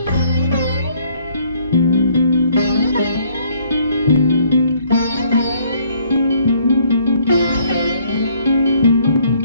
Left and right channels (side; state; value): both; inverted; correlation -0.63